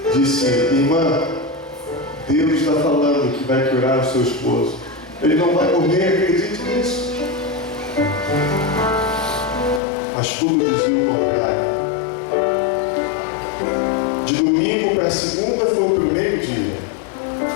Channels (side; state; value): right; drops out; at 9.8 s